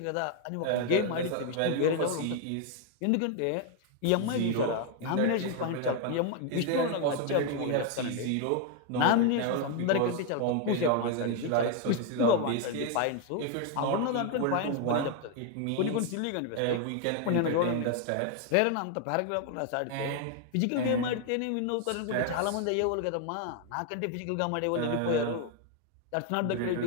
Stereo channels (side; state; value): both; different; correlation 0.01